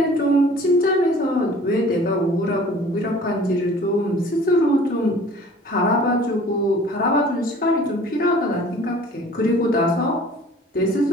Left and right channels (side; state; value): both; normal; correlation 0.49